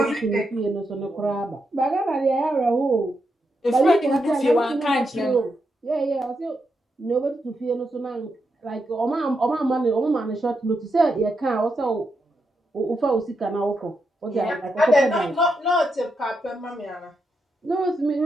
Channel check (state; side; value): normal; both; correlation 0.84